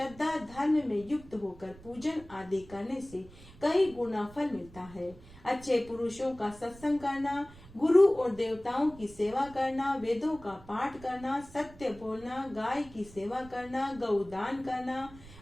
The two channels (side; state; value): right; noise; rumble, 20 dB below the sound